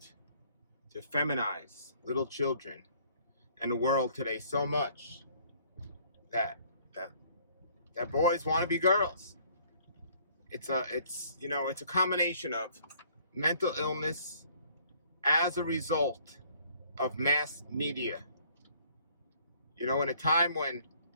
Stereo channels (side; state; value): both; inverted; correlation -0.60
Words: to feminize little children and the world today so much that that, that boys want to be girls. It's a combination of mental illness as a result of mass media. In a time when